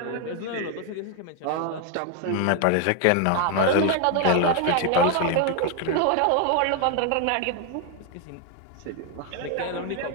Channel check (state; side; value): different; both; correlation 0.01